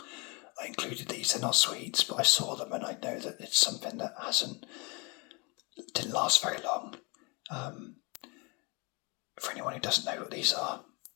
I included these. They're not sweets, but I saw them and I know that it's something that didn't last very long. For anyone who doesn't know what these are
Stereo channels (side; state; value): right; quieter; 29.9 dB